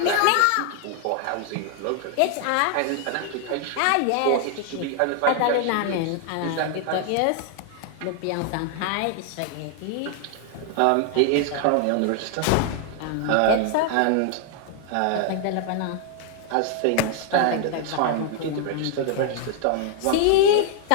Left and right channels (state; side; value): different; both; correlation 0.00